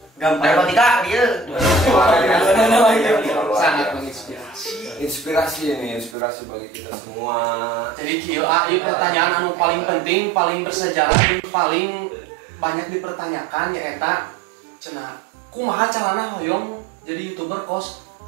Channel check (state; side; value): drops out; left; at 6.2 s